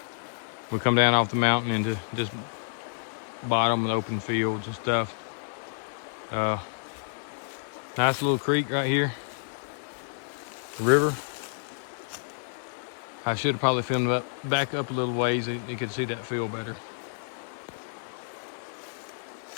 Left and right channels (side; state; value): right; silent; 58 dB below the other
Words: come down off the mountain into just bottom and open fields and stuff. Nice little creek right here. River. I should have probably filmed it back up a little ways so you could see that field better.